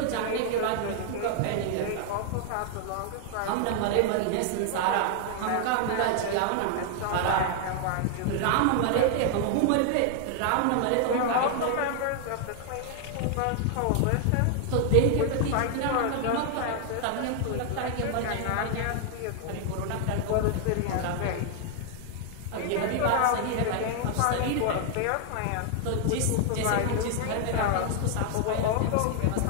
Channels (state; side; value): different; both; correlation 0.00